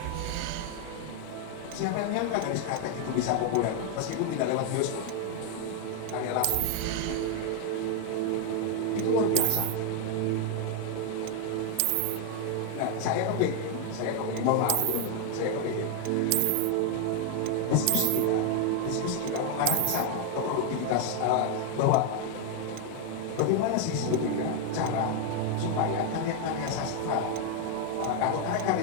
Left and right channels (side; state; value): both; different; correlation 0.01